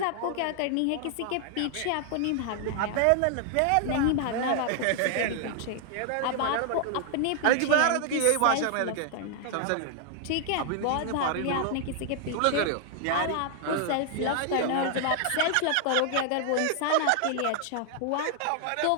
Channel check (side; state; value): both; different; correlation 0.00